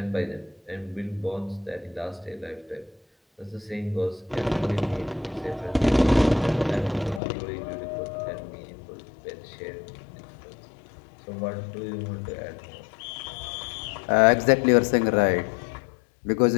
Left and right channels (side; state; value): right; drops out; at 7.2 s